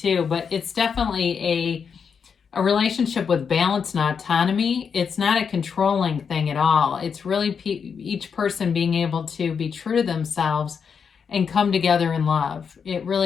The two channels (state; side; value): quieter; right; 6.4 dB